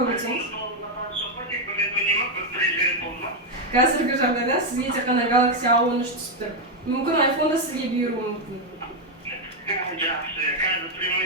өтсеңіз. Қазіргі жағдайда сізге тек қана Galaxy A13 түсіп тұр. Мүмкін iPhone да сізге бұйыруы мүмкін. Жақсы, қазір прямой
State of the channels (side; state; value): both; normal; correlation 0.03